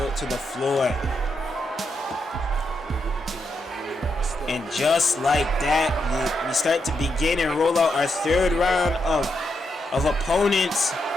to the floor. And just like that, we start to begin and roll out our 3rd round of opponents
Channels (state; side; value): normal; both; correlation 0.82